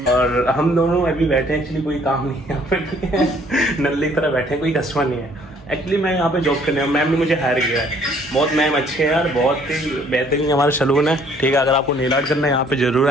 और हम दोनों अभी बैठे हैं, एक्चुअली कोई काम नहीं है यहाँ पे। नल्ले की तरह बैठे हैं, कोई कस्टमर नहीं है। एक्चुअली मैं यहाँ पे जॉब करने हूँ, मैम ने मुझे हायर किया है। बहुत मैम अच्छे हैं यार, बहुत ही बेहतरीन हमारा सैलून है। ठीक है, अगर आपको नेल आर्ट करना है यहाँ पे जरूर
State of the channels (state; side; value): normal; both; correlation 0.60